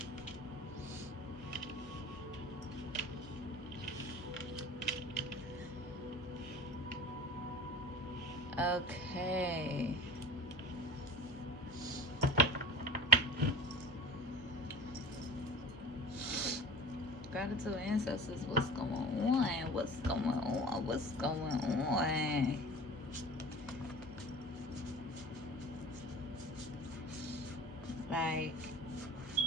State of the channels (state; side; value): normal; both; correlation 0.37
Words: Okay. Gratitude ancestors, what's going on? What's going on? What's going on? Like,